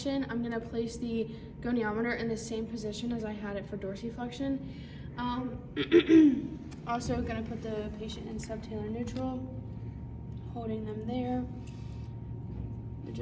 I'm going to place the goniometer in the same position as I had it for dorsiflexion. Also going to put the patient in subtalar neutral, holding them there.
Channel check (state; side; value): identical; both; correlation 1.00